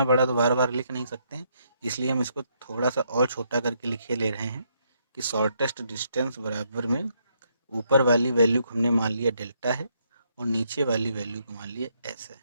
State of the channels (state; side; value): inverted; both; correlation -0.74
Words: बड़ा तो बार बार लिख नहीं सकते हैं, इसलिए हम इसको थोड़ा सा और छोटा करके लिखे ले रहे हैं कि शॉर्टेस्ट डिस्टेंस बराबर में ऊपर वाली वैल्यू को हमने मान लिया डेल्टा है और नीचे वाली वैल्यू को मान लिया एस है।